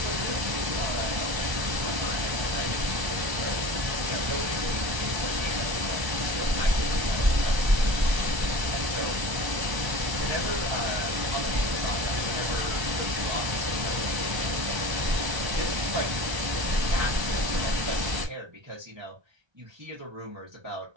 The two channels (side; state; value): left; late; 1.3 ms